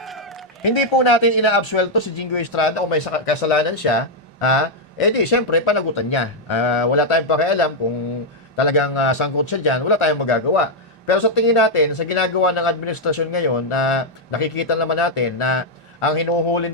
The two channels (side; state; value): both; normal; correlation -0.02